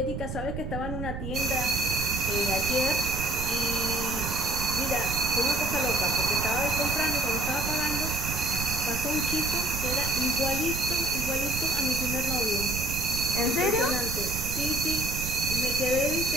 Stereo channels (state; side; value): noise; right; rumble, 6 dB below the sound